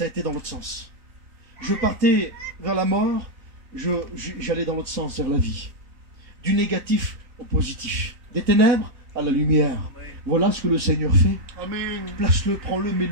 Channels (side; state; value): left; late; 3.6 ms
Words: a été dans l'autre sens. Je partais vers la mort, j'allais dans l'autre sens, vers la vie. Du négatif au positif. Des ténèbres à la lumière. Voilà ce que le Seigneur fait. Place-le, prends-le,